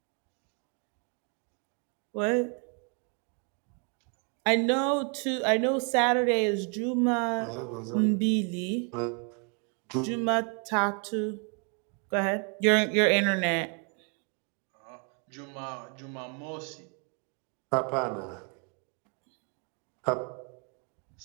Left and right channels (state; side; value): quieter; left; 38.1 dB